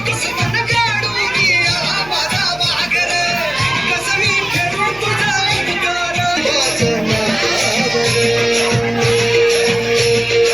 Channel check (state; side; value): noise; left; hum, 21 dB below the sound